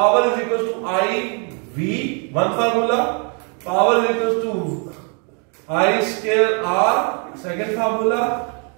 is equals to I, V, one formula. Power is equals to I square R, second formula.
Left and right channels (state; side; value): quieter; left; 37.7 dB